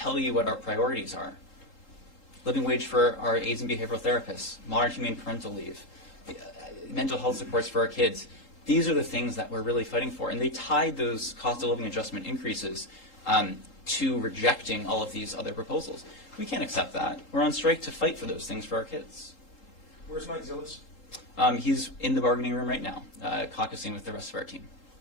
you what our priorities are. living wage for our aides and behavioral therapists, modern humane parental leave, mental health supports for our kids. These are the things that we're really fighting for. And they tied those cost of living adjustment increases to rejecting all of these other proposals. We can't accept that. We're on strike to fight for those things for our kids. Where's Mike Zillis? He's in the bargaining room right now, caucusing with the rest of our team.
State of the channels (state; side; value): late; right; 3.8 ms